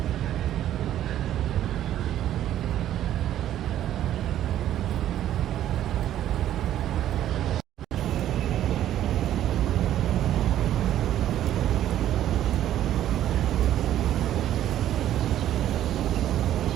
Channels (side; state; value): left; quieter; 12.0 dB